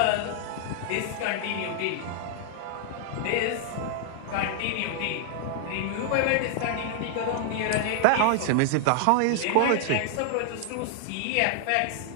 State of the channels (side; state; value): both; different; correlation 0.00